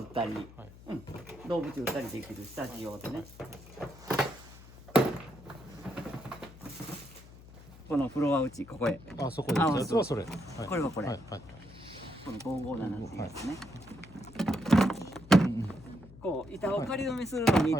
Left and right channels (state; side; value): noise; left; hum, 19 dB below the sound